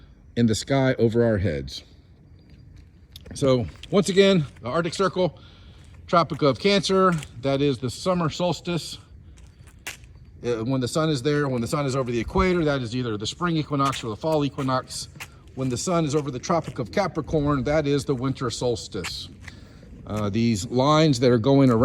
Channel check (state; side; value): identical; both; correlation 1.00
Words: in the sky over our heads. So once again, the Arctic Circle, Tropic of Cancer, that is the summer solstice. When the sun is there, when the sun is over the equator, that is either the spring equinox or the fall equinox. When the sun is over the Tropic of Capricorn, that is the winter solstice. These lines that are going